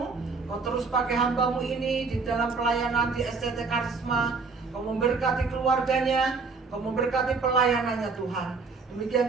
Kau terus pakai hamba-Mu ini di dalam pelayanan di STT Karisma. Kau memberkati keluarganya, Kau memberkati pelayanannya Tuhan.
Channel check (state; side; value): quieter; left; 4.5 dB